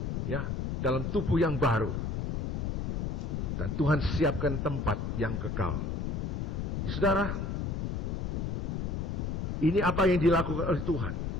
Ya, dalam tubuh yang baru. Dan Tuhan siapkan tempat yang kekal. Saudara, ini apa yang dilakukan oleh Tuhan.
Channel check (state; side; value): noise; left; rumble, 1 dB below the sound